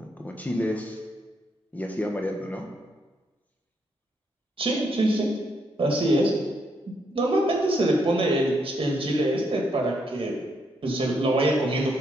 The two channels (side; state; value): both; normal; correlation 0.76